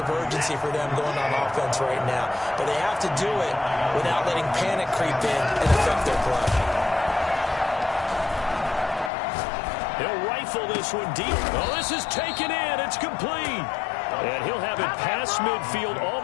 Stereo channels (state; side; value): drops out; right; at 9.1 s